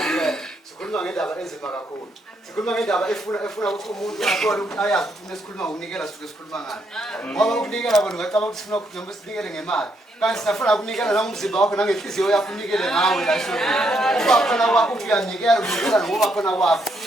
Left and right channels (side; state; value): both; normal; correlation 0.76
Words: sikhuluma ngendaba enzima kakhulu. Sikhuluma ngendaba efuna ukuthi umuntu athole ukuthi ayazi ukuthi sikhuluma ngokunikela sisuke sikhuluma ngani. Ngoba ukunikela bona ngicabanga ukuthi sifuna ukuthi noma sinikele ngemali. Kanti sifuna ukunikela nangomzimba wakho nangenhliziyo yakho unikele ngawe la esonto. Kuba khona kwakho uyanikela ngoba khona kwakho.